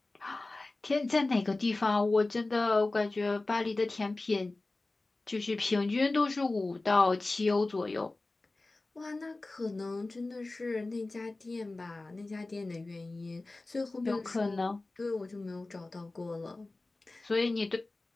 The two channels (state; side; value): quieter; right; 3.1 dB